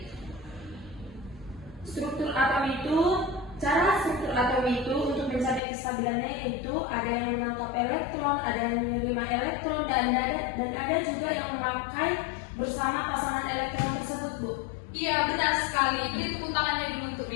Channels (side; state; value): right; drops out; at 5.6 s